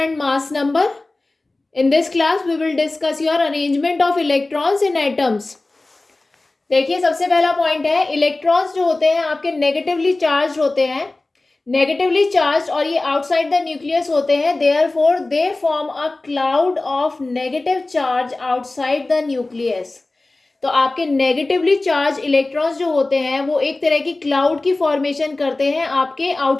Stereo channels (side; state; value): right; quieter; 3.0 dB